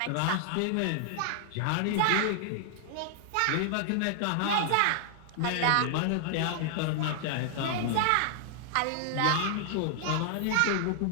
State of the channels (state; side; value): different; both; correlation 0.00